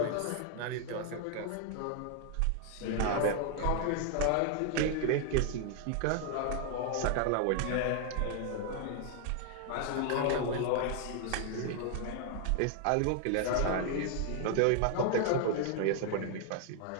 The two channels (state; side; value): different; both; correlation 0.00